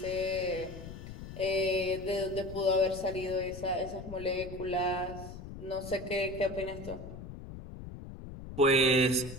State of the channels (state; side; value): noise; left; rumble, 11 dB below the sound